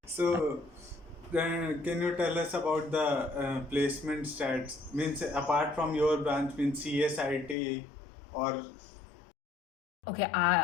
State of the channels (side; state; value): right; drops out; at 7.6 s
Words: So can you tell us about the placement stats? Means apart from your branch, means CSIT or Okay,